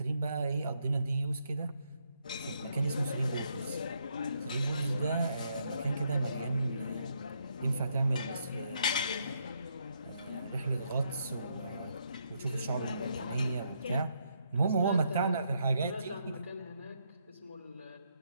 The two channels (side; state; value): both; inverted; correlation -0.76